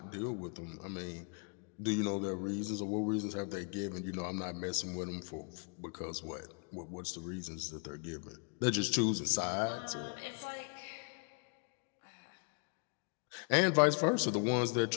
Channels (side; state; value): right; quieter; 39.5 dB